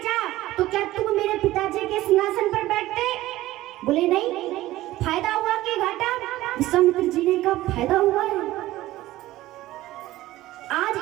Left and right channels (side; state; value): left; quieter; 16.2 dB